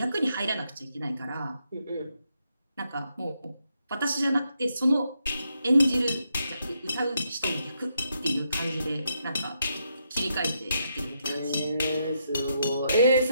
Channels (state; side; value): inverted; both; correlation -0.79